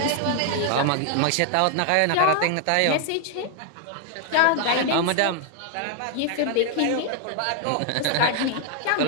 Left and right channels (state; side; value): different; both; correlation 0.00